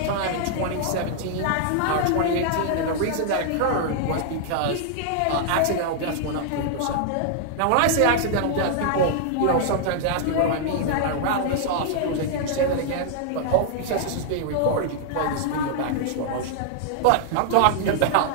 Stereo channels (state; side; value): different; both; correlation -0.01